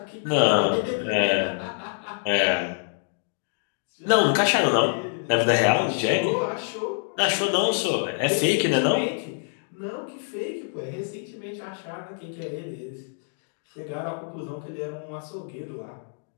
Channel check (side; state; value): right; silent; 61 dB below the other